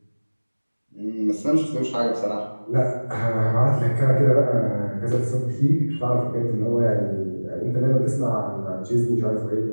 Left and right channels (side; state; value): both; inverted; correlation -1.00